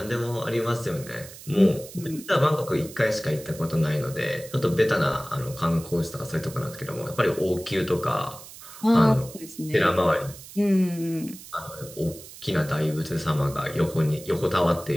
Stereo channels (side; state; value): right; noise; hiss, 16 dB below the sound